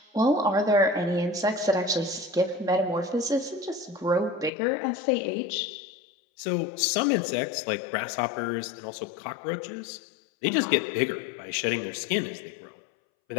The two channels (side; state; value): right; drops out; at 4.5 s